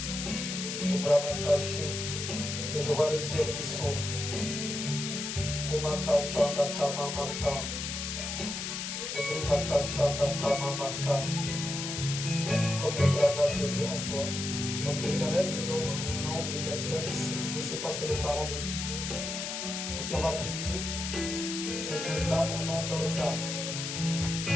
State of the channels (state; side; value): noise; left; hiss, 4 dB below the sound